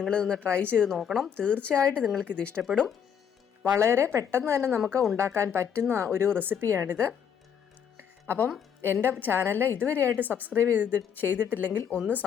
ട്രൈ ചെയ്ത് നോക്കണം. തീർച്ചയായിട്ടും നിങ്ങൾക്കിത് ഇഷ്ടപ്പെടും. വളരെ പെട്ടെന്ന് തന്നെ നമുക്ക് ഉണ്ടാക്കാൻ പറ്റുന്ന ഒരു റെസിപ്പിയാണിത്. അപ്പം എൻ്റെ ചാനൽ ഇതുവരെയായിട്ട് സബ്സ്ക്രൈബ് ചെയ്തിട്ടില്ലെങ്കിൽ ഒന്ന്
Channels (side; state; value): right; quieter; 7.9 dB